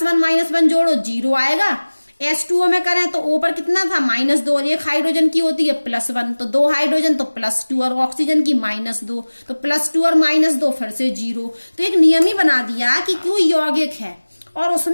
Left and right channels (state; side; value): inverted; both; correlation -1.00